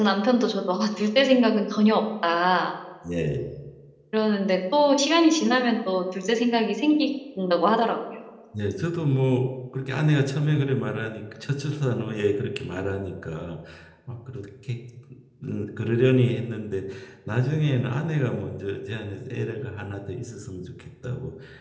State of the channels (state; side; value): identical; both; correlation 1.00